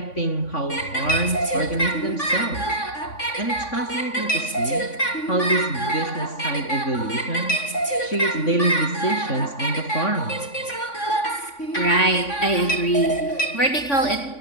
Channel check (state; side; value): late; right; 3.5 ms